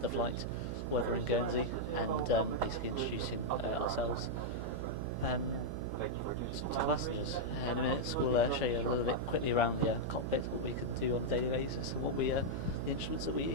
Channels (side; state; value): right; noise; hum, 4 dB below the sound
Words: the flight, weather in Guernsey, and basically introducing ourselves to the passengers. In a minute we'll show you a little bit quickly around the cockpit, what we could do on a daily basis, and what the instruments that we